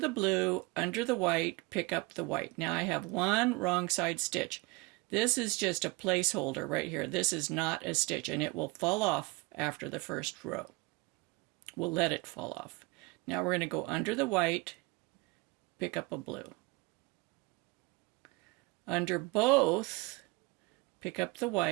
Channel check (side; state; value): left; quieter; 24.8 dB